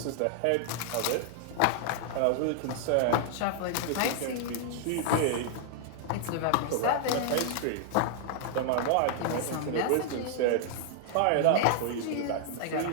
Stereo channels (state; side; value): different; both; correlation 0.00